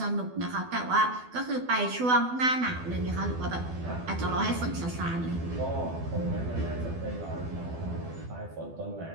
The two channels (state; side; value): late; left; 12 ms